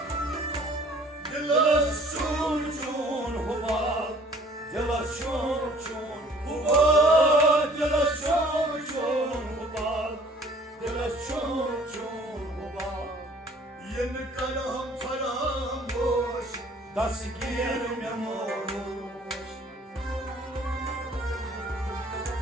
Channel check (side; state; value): both; normal; correlation 0.54